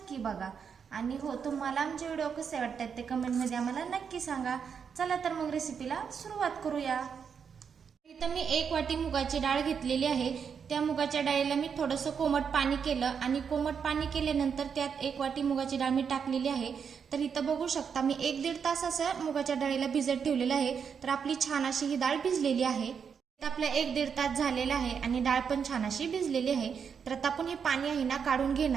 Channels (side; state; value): left; quieter; 6.7 dB